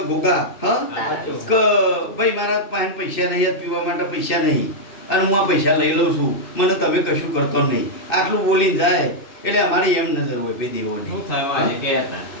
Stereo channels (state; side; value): late; right; 2.6 ms